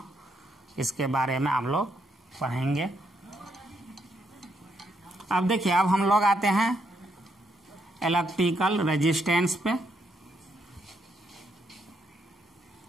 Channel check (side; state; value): both; normal; correlation 0.77